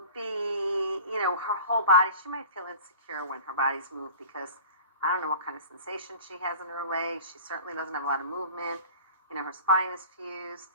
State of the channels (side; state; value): both; inverted; correlation -0.40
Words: be, her whole body, she might feel insecure when her body's moved because I don't know what kind of sensation she has in her legs. She certainly doesn't have a lot of movement. Her spine is fused.